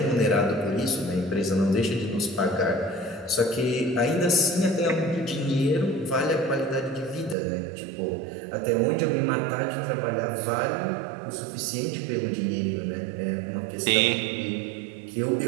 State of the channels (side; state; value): left; drops out; at 7.4 s